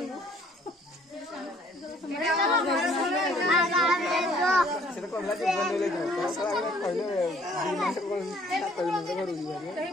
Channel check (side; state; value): both; normal; correlation 0.59